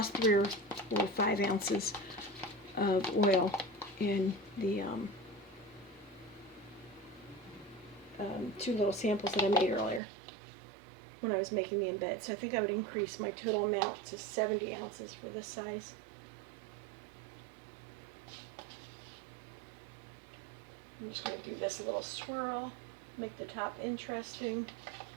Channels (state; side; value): drops out; left; at 10.0 s